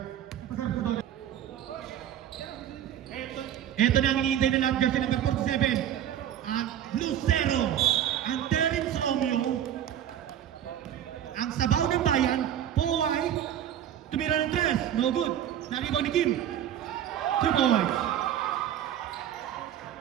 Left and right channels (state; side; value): quieter; left; 10.5 dB